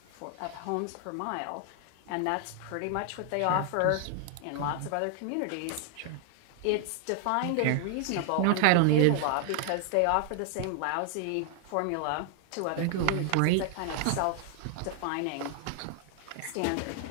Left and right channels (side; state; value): both; different; correlation 0.00